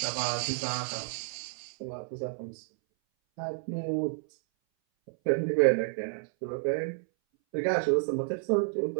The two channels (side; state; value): left; silent; 58 dB below the other